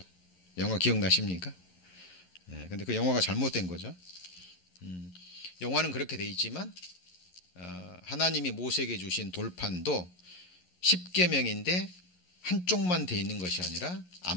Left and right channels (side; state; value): right; late; 11 ms